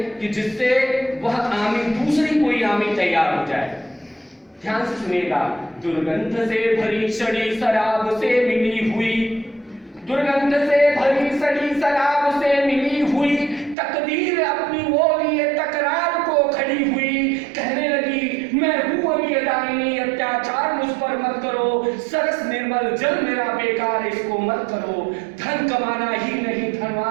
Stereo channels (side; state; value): left; drops out; at 13.8 s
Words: कि जिससे वह आमी, दूसरी कोई आमी तैयार हो जाए। ध्यान से सुनिएगा। दुर्गंध से भरी सड़ी शराब से मिली हुई, दुर्गंध से भरी सड़ी शराब से मिली हुई, तकदीर अपनी वो लिए तकरार को खड़ी हुई। कहने लगी मैं हूं अभी दामिनी, अत्याचार मुझ पर मत करो, सरस निर्मल जल मेरा बेकार, इसको मत करो। धन कमाना ही नहीं